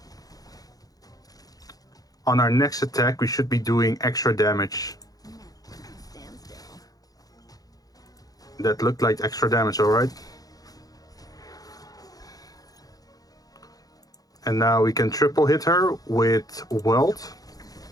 on our next attack we should be doing extra damage. That looked like extra damage, alright? And now we can triple hit her with Weld.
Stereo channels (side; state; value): right; late; 0.18 ms